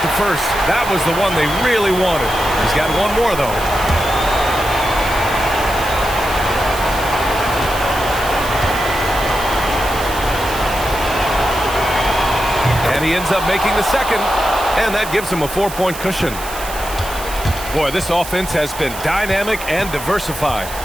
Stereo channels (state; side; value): noise; right; hiss, 12 dB below the sound